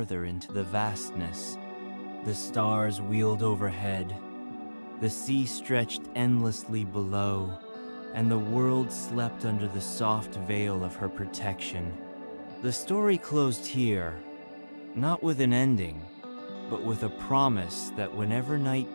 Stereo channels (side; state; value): both; inverted; correlation -1.00